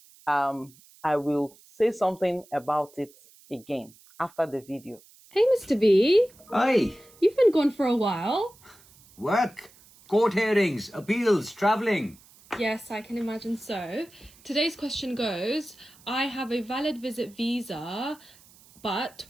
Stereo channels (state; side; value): noise; right; hiss, 26 dB below the sound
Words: I will say something about it again after the video. Hey, Mr. B. Hi. You've been gone for a while. Work, court hearings, appeals, travelling. Yes, I can imagine so. Today's question goes, I have a valid visit visa, but